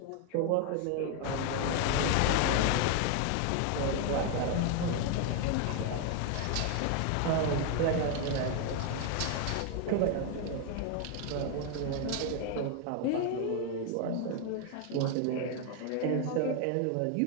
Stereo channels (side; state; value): both; different; correlation 0.01